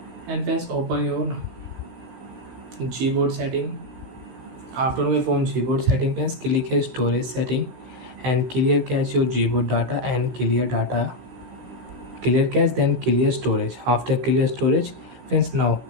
And friends, open your Gboard setting. After your phone Gboard setting friends, click here storage setting and clear cache your Gboard data and clear cache, then clear storage. After clear storage friends, now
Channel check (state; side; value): late; left; 16 ms